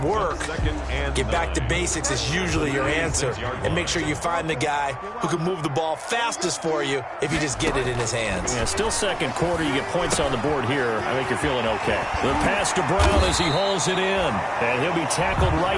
work? Get back to basics is usually your answer. And make sure you find the guy who can move the ball fastest for you if you just get it in his hands. Yeah, still 2nd quarter. You get points on the board here. I think you're feeling okay. The pass to Brown as he hauls it in. And he'll be tackled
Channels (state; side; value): identical; both; correlation 1.00